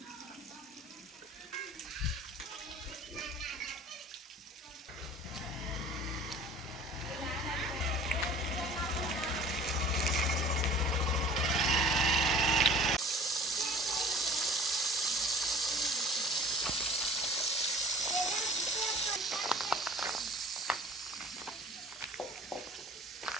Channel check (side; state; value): both; normal; correlation 0.46